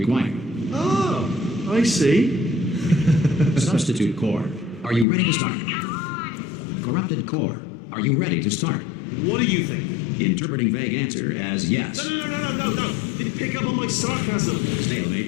Oh, I see. Substitute core. Are you ready to start? Corrupted core. Are you ready to start? What do you think? Interpreting vague answer as yes. No. Didn't pick up on my sarcasm.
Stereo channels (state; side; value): drops out; right; at 5.1 s